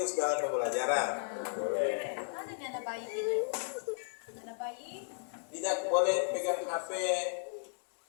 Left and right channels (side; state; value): right; silent; digital silence